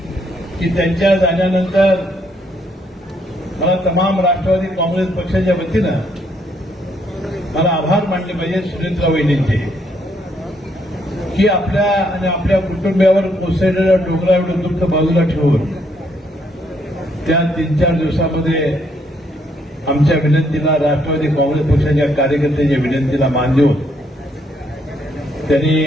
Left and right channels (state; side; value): normal; both; correlation 0.72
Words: की त्यांच्या जाण्यानंतर मला तमाम राष्ट्रवादी काँग्रेस पक्षाच्या वतीनं मला आभार मानले पाहिजे सुनेत्रा वहिनींचे की आपल्या आणि आपल्या कुटुंबियावर कोसळलेल्या डोंगरा एवढं दुःख बाजूला ठेवून त्या 3-4 दिवसामध्ये आमच्या विनंतीला, राष्ट्रवादी काँग्रेस पक्षाच्या कार्यकर्त्यांच्या विनंतीला मान देऊन त्यांनी